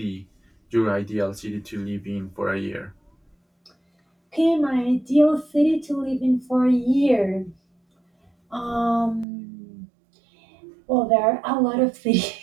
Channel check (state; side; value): drops out; left; at 9.2 s